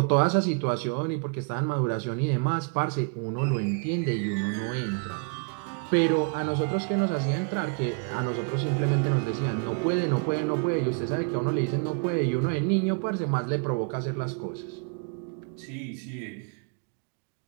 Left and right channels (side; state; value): left; quieter; 38.0 dB